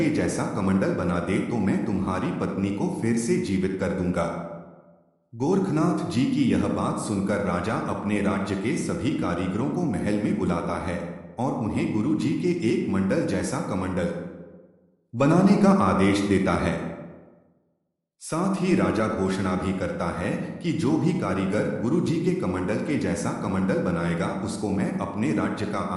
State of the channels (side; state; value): both; identical; correlation 1.00